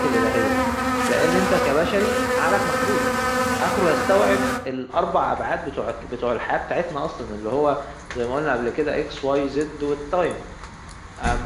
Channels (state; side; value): identical; both; correlation 1.00